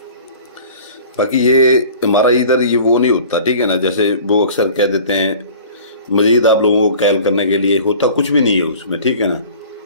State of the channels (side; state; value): both; inverted; correlation -0.44